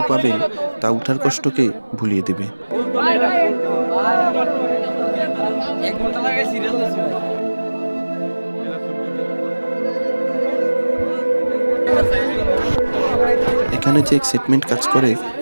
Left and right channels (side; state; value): both; inverted; correlation -1.00